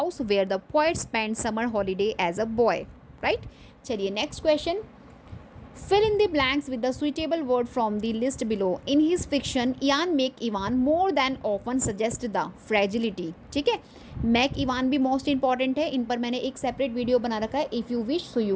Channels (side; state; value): both; identical; correlation 1.00